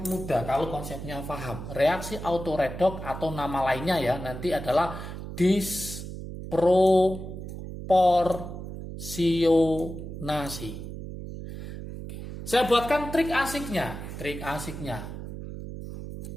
mudah kalau konsepnya paham. Reaksi autoredoks atau nama lainnya ya nanti adalah disproporsionasi. Saya buatkan trik asiknya. Trik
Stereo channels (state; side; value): noise; right; hum, 9 dB below the sound